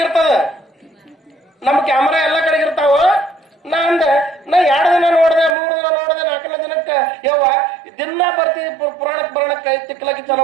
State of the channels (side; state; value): left; drops out; at 5.6 s